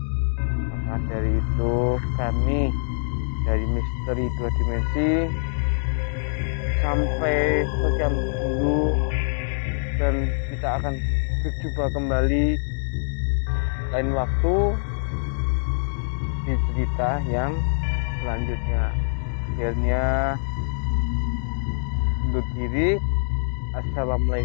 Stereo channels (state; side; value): silent; right; digital silence